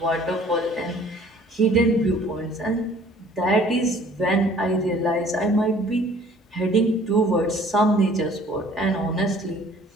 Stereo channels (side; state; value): both; normal; correlation 0.54